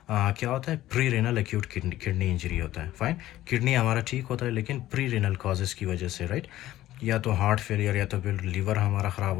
क्या होता है, pre renal acute kidney injury होता है, फाइन। किडनी हमारा ठीक होता है लेकिन प्री रेनल कॉजेज़ की वजह से, राइट, या तो हार्ट फेलियर या तो फिर लीवर हमारा ख़राब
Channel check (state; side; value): quieter; right; 14.5 dB